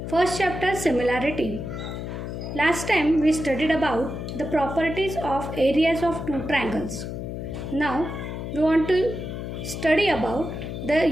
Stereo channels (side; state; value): left; noise; hum, 6 dB below the sound